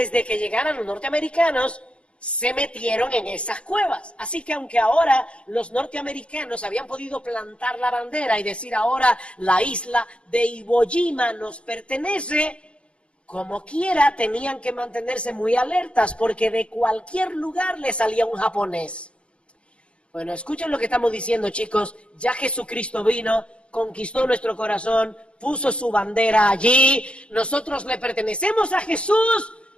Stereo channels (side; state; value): right; late; 0.059 ms